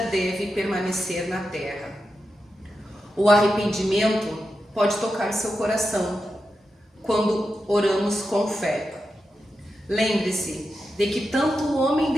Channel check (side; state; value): both; normal; correlation 0.89